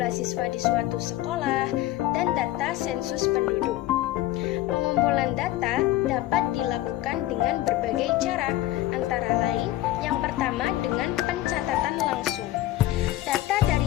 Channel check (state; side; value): quieter; right; 15.3 dB